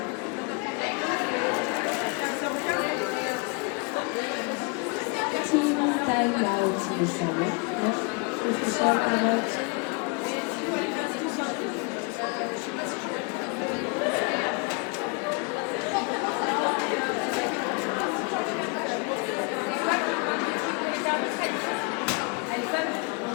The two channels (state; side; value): quieter; right; 32.2 dB